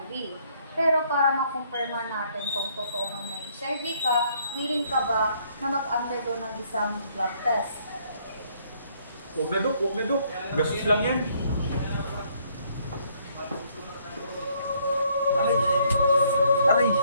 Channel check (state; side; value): inverted; both; correlation -0.67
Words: Pero para makumpirma natin kung totoo ang may HIV ka, willing ka ba na mag-undergo ng isang blood test? Huwag na, Dok. Gastos lang yan. Aray! Aray!